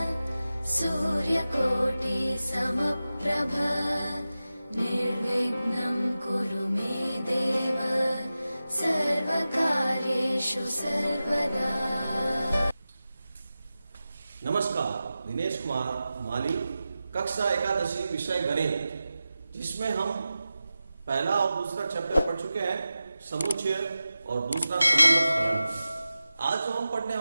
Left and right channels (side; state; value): both; inverted; correlation -0.94